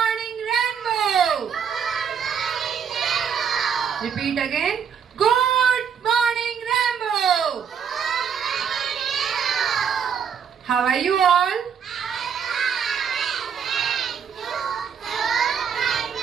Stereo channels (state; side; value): quieter; left; 7.4 dB